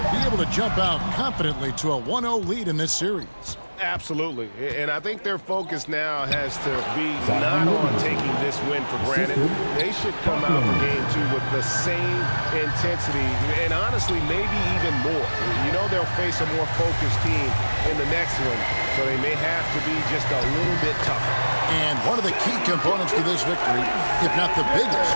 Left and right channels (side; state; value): both; inverted; correlation -1.00